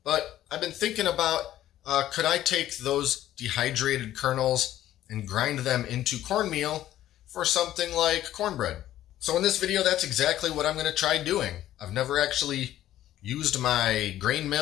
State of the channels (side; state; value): right; quieter; 13.1 dB